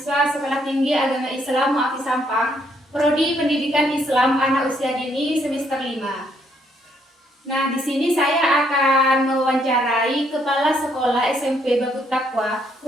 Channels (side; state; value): both; normal; correlation 0.71